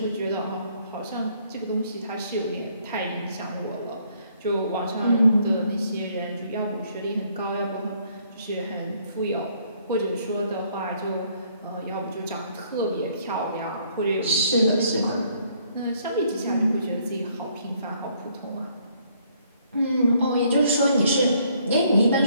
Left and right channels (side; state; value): both; inverted; correlation -0.66